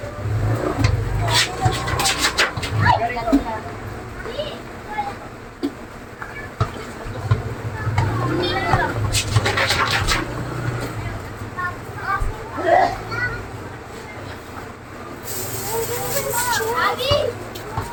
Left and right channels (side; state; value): both; identical; correlation 1.00